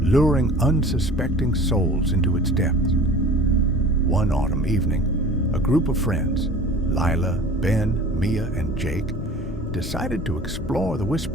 unsuspecting souls into its depths. One autumn evening, a group of friends, Lila, Ben, Mia, and Jake, decided to explore the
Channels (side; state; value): both; normal; correlation 0.43